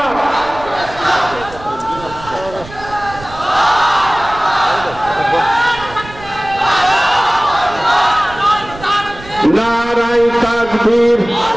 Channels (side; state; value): right; noise; rumble, 17 dB below the sound